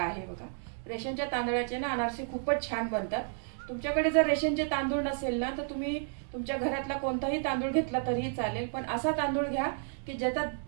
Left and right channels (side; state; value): left; silent; digital silence